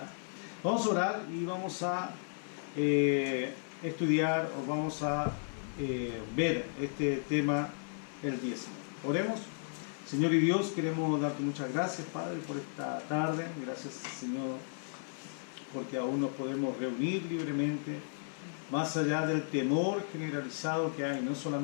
Vamos a orar y vamos a estudiar, o vamos a ver este tema, el diezmo. Oremos. Señor y Dios, queremos darte muchas gracias, Padre, por esta tarde. Gracias, Señor, porque aún nos podemos reunir libremente, más allá del temor generalizado que hay, no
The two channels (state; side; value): silent; right; 55 dB below the other